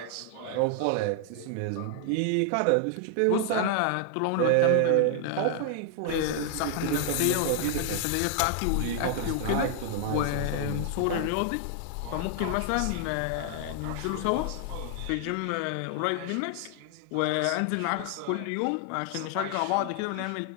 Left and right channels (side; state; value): both; different; correlation 0.00